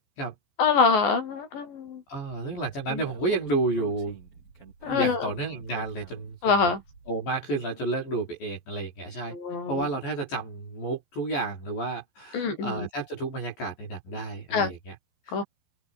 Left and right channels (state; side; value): late; right; 11 ms